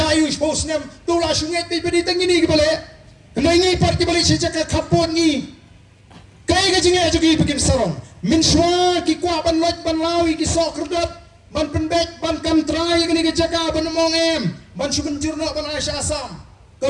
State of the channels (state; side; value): identical; both; correlation 1.00